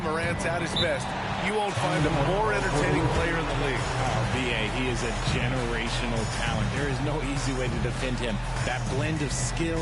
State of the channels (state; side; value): identical; both; correlation 1.00